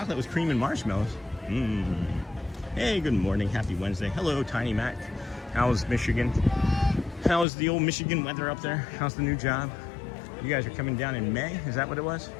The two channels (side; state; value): right; drops out; at 7.5 s